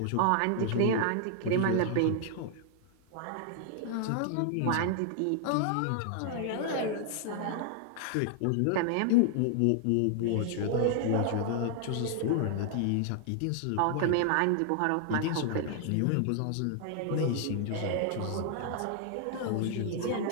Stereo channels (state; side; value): different; both; correlation 0.00